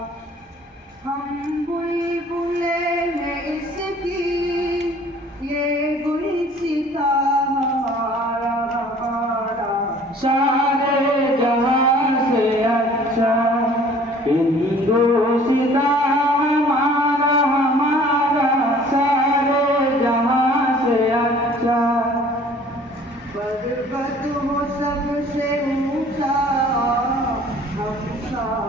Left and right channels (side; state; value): both; normal; correlation 0.51